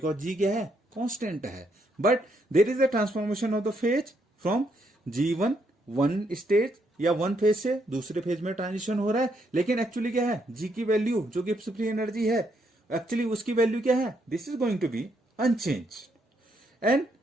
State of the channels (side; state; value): both; normal; correlation 0.75